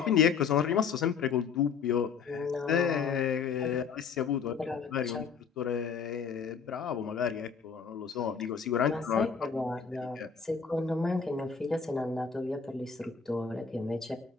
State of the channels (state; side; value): quieter; right; 6.1 dB